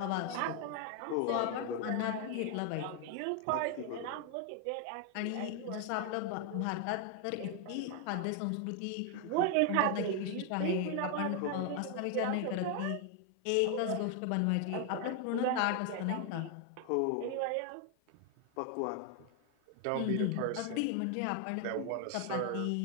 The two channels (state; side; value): different; both; correlation 0.00